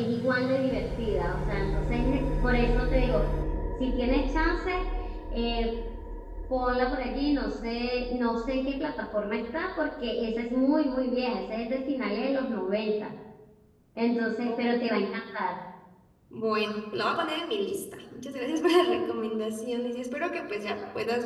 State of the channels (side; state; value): both; identical; correlation 1.00